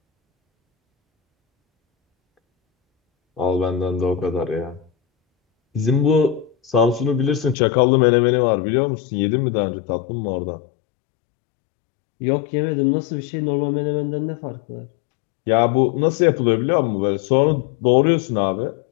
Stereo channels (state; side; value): drops out; right; at 7.6 s